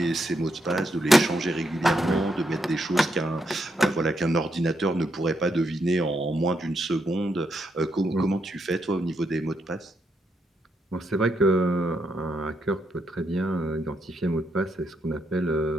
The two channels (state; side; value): normal; both; correlation 0.79